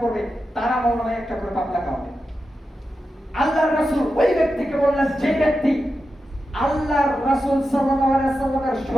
করবে তার আমলনামায় একটা করে পাপ লেখা হবে। আল্লাহর রাসূল ওই ব্যক্তিকে বললেন যে ব্যক্তি আল্লাহর রাসূল সাল্লাল্লাহু আলাইহি ওয়াসাল্লামের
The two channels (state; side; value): normal; both; correlation 0.90